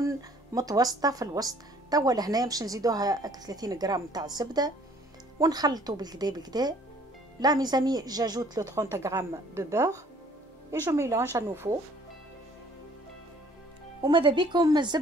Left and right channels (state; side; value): normal; both; correlation 0.57